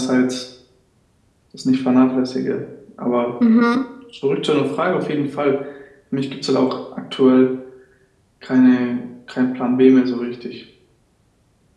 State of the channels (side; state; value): both; identical; correlation 1.00